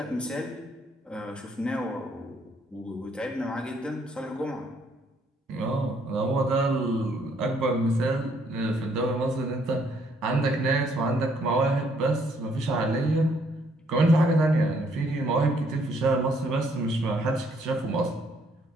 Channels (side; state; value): both; normal; correlation 0.68